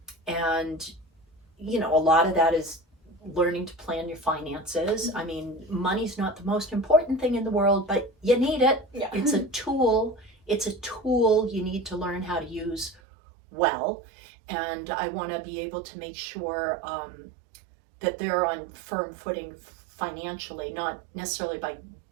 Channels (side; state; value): left; drops out; at 13.0 s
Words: you know, a lot of that is learning to plan your finances. I mean, money's not the most important thing in the world, but you need it. It's a tool. It's a tool you need to learn how to use well. And I want to be able to make sure that they're on firm footing financially, not necessarily by